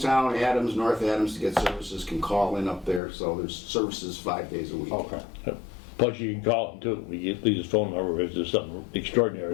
Adams, North Adams to get services, can call in up there, so there's services 5 days a week. Okay. Plus you can call him too. We get his phone number if there's something extraordinary.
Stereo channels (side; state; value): right; drops out; at 3.0 s